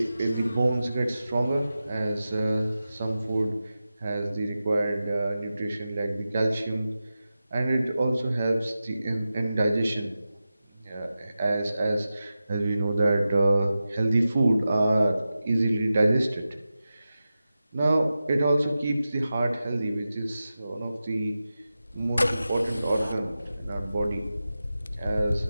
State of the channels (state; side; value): inverted; both; correlation -0.93